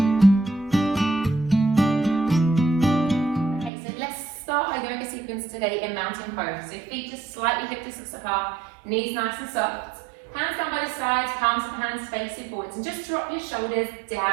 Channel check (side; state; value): left; drops out; at 3.7 s